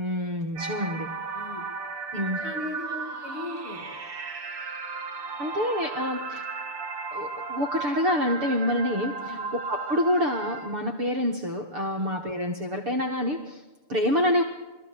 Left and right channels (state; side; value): late; left; 6.8 ms